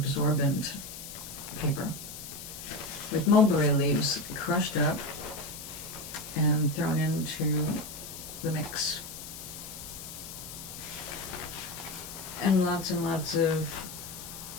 paper with mulberry leaves crushed up and thrown into the mix. And lots of,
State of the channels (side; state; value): left; noise; hiss, 11 dB below the sound